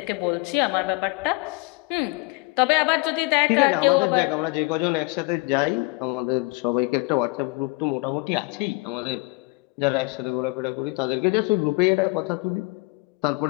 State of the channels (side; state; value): right; quieter; 26.7 dB